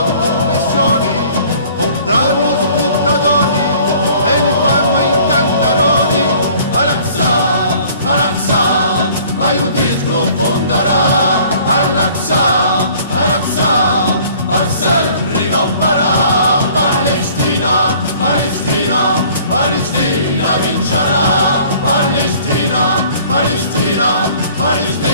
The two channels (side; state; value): both; inverted; correlation -0.53